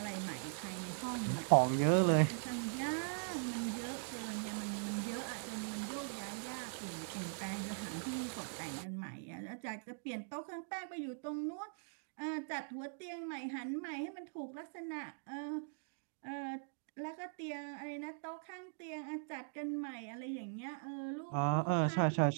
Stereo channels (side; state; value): left; silent; digital silence